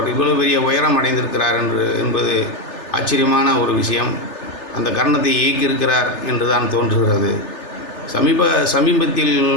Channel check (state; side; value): late; right; 3.4 ms